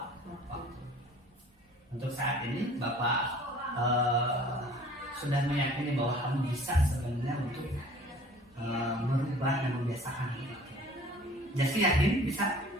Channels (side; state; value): both; normal; correlation 0.50